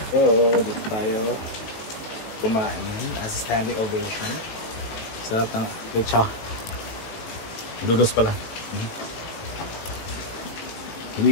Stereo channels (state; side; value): late; right; 19 ms